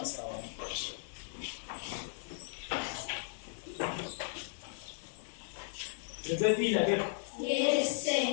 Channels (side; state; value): right; silent; digital silence